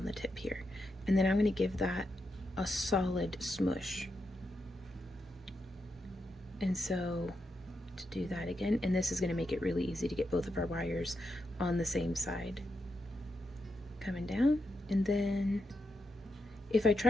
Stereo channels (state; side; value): normal; both; correlation 0.85